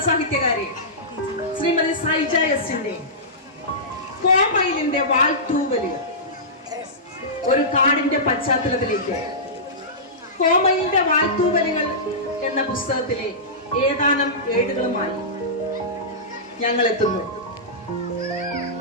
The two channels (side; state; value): both; normal; correlation -0.17